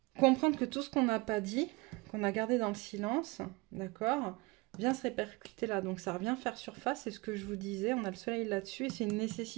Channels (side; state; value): left; quieter; 24.6 dB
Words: Comprendre que tout ce qu'on n'a pas dit, qu'on a gardé dans le silence, d'accord, vient se répercuter là. Donc ça revient faire surface, c'est ce que je vous disais, on a le soleil là-dessus et c'est une